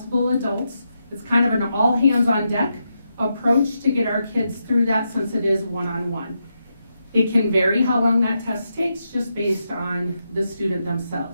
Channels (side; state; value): both; inverted; correlation -0.84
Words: adults. It's kind of an all hands on deck approach to get our kids through that, since it is one-on-one. It can vary how long that test takes just based on the student